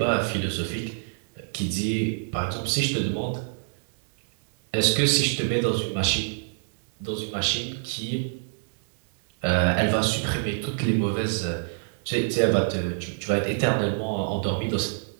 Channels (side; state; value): left; silent; digital silence